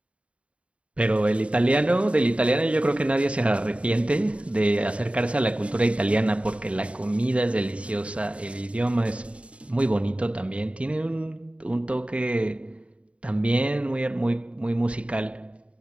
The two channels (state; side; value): late; left; 0.062 ms